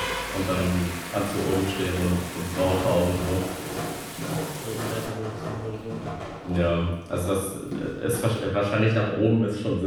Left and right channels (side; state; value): both; identical; correlation 1.00